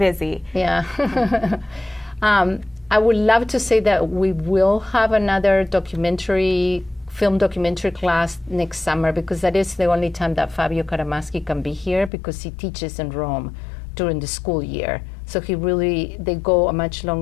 Yeah. I would love to say that we will have another film documentary class next summer because that is the only time that Fabio Karamaschi can be here because he teaches in Rome during the school year. So they go much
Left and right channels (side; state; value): right; drops out; at 12.1 s